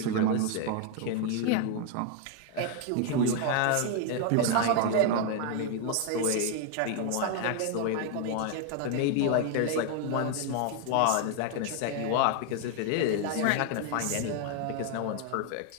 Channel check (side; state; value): both; different; correlation 0.01